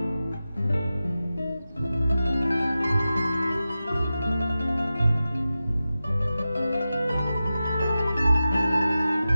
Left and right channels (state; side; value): inverted; both; correlation -0.93